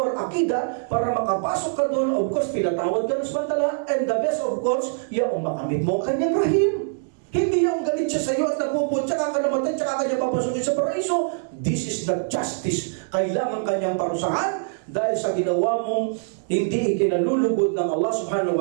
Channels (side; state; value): left; silent; digital silence